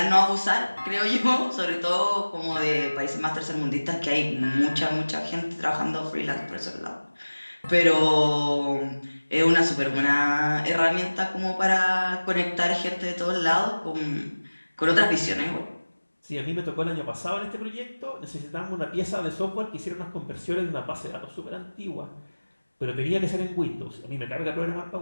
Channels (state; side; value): inverted; both; correlation -1.00